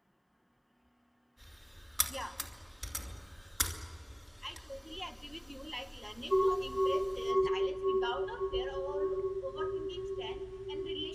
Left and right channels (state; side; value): identical; both; correlation 1.00